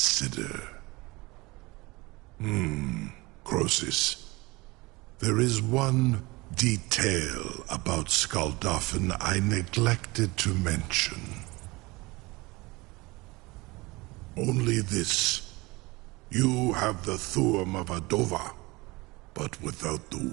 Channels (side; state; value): left; quieter; 23.2 dB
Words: Croesus. There is one detail about Skuldafn I neglected to mention. Only this. You have the Thuum of Adova, but without the